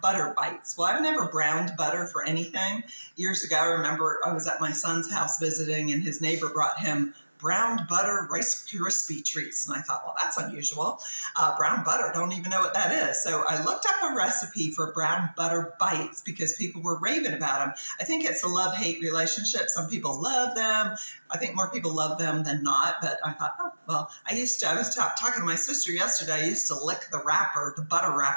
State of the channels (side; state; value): both; inverted; correlation -1.00